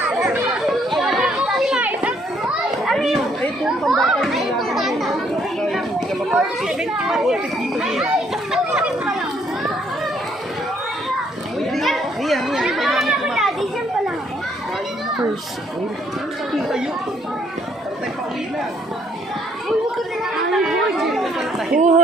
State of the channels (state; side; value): normal; both; correlation 0.68